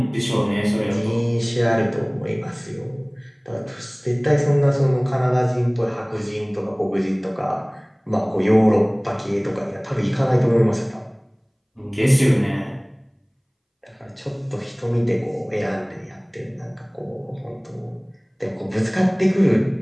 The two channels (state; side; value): identical; both; correlation 1.00